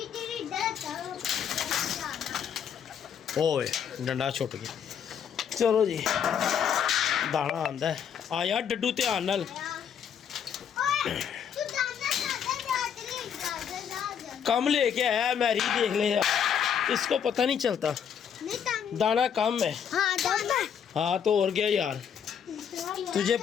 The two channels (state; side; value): quieter; right; 8.1 dB